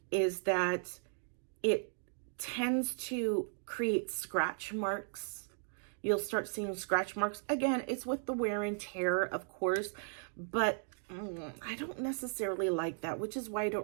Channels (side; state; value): left; silent; digital silence